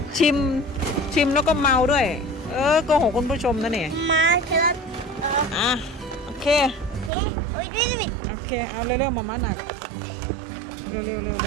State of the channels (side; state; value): left; drops out; at 7.1 s